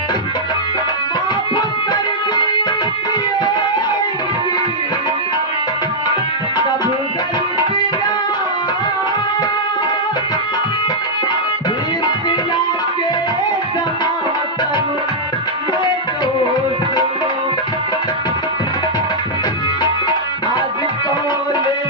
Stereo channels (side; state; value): both; normal; correlation -0.07